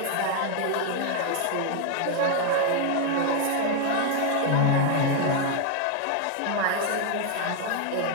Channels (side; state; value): both; different; correlation 0.00